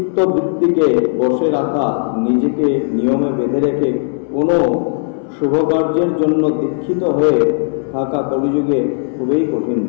বসে রাখা, নিজেকে নিয়মে বেঁধে রেখে কোনো शुभ कार्यर जन्य दीक्षित हয়ে থাকা কলিযুগে খুবই কঠিন।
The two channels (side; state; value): right; silent; 63 dB below the other